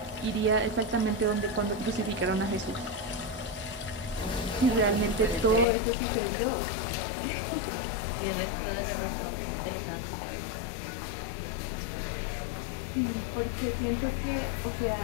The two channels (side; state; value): right; drops out; at 5.7 s